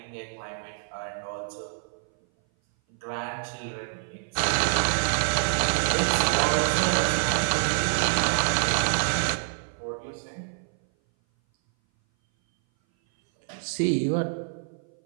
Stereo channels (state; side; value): silent; left; 58 dB below the other